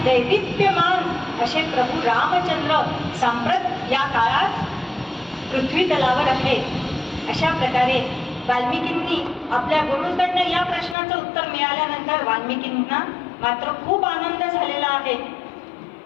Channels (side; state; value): right; drops out; at 11.0 s